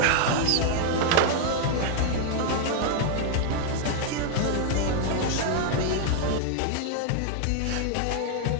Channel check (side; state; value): both; different; correlation 0.00